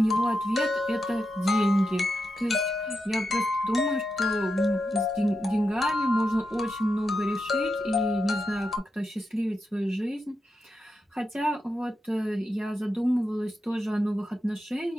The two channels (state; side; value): normal; both; correlation 0.87